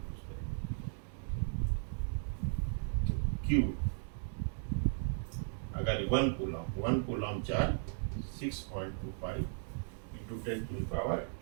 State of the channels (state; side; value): silent; left; digital silence